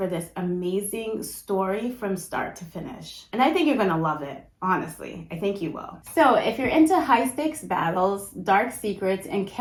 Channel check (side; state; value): both; identical; correlation 1.00